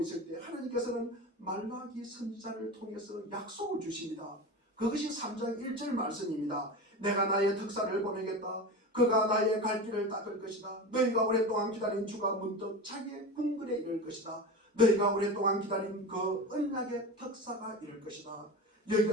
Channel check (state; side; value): normal; both; correlation 0.27